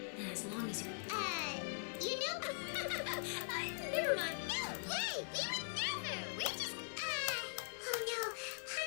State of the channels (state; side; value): silent; right; digital silence